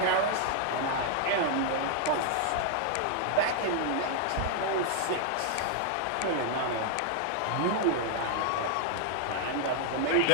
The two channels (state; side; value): different; both; correlation 0.00